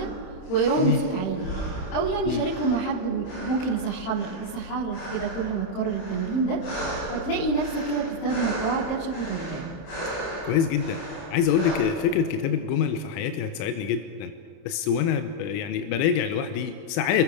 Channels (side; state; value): right; late; 31 ms